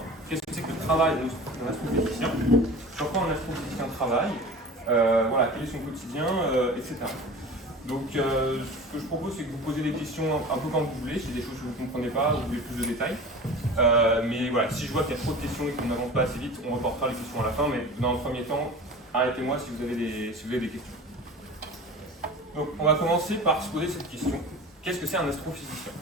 Qu'est-ce que c'est que le travail d'un astrophysicien? Sur quoi un astrophysicien travaille? Voilà, quel est son quotidien, etc. Donc, ce que je propose, c'est que vous posez des questions un peu quand vous voulez, si des choses que vous ne comprenez pas, vous voulez plus de détails. Mais voilà, si je vois qu'il y a trop de questions et qu'on n'avance pas assez vite, on reportera les questions à la fin. Mais dans le premier temps, arrêtez-moi si vous avez des questions. Donc, on va commencer par se poser cette question. Qu'est-ce que c'est un astrophysicien?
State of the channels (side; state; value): both; normal; correlation 0.36